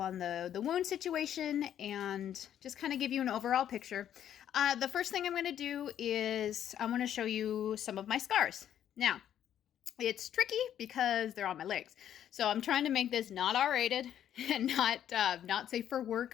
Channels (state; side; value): quieter; right; 10.3 dB